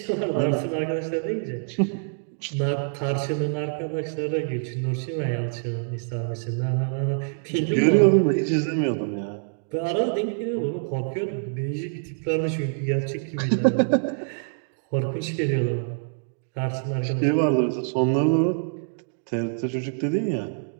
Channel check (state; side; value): silent; left; digital silence